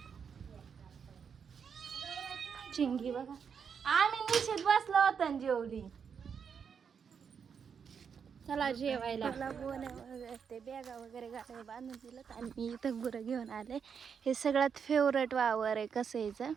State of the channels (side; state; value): left; quieter; 6.8 dB